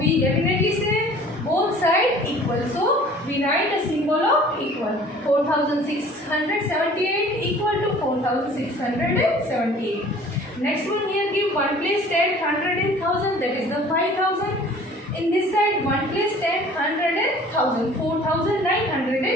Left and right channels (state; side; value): normal; both; correlation 0.49